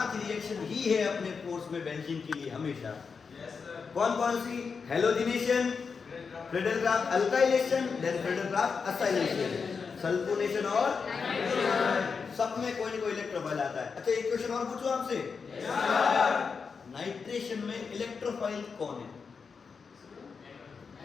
रिएक्शन ही है अपने कोर्स में बेंजीन के लिए हमेशा। कौन कौन सी? Halogenation, Friedel Crafts alkylation, then Friedel Crafts acylation, sulphonation और सब में कोई ना कोई इलेक्ट्रोफाइल आता है। अच्छा एक क्वेश्चन और पूछूं आपसे, नाइट्रेशन में इलेक्ट्रोफाइल कौन है?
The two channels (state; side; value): quieter; right; 5.4 dB